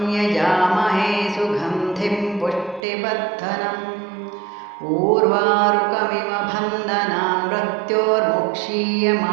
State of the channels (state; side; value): drops out; left; at 2.8 s